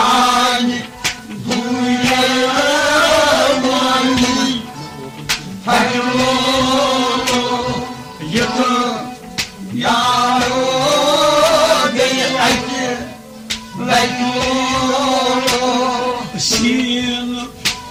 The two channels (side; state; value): both; identical; correlation 1.00